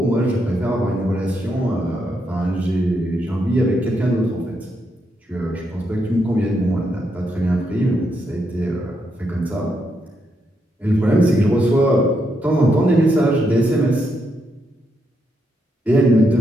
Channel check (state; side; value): normal; both; correlation 0.80